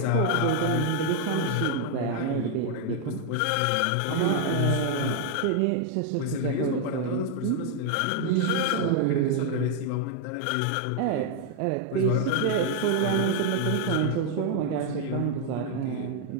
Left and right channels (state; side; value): different; both; correlation 0.00